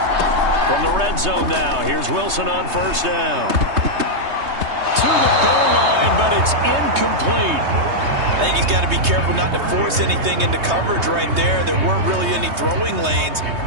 From the red zone now, here's Wilson on first down. To the goal line, but it's incomplete. I think he's got to be careful not to force anything into coverage right there. There weren't really any throwing lanes,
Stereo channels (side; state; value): left; late; 3.2 ms